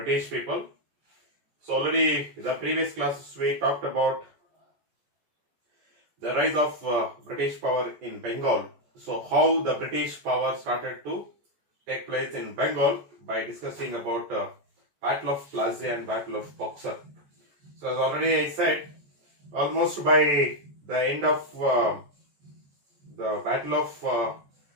people. So already in the previous classes we talked about the rise of British power in Bengal. So how the British power started to take place in Bengal by discussing about Battle of Plassey and Battle of Boxer. So as already I said, almost by the end of the Battle of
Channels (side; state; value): left; late; 14 ms